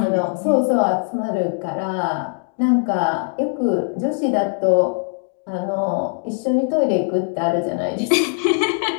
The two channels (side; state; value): right; silent; 63 dB below the other